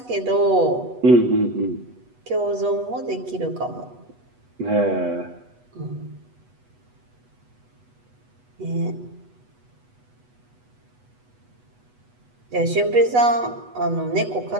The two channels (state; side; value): late; left; 8.1 ms